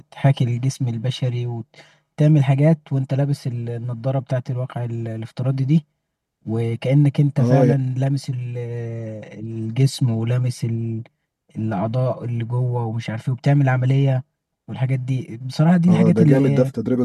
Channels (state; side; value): identical; both; correlation 1.00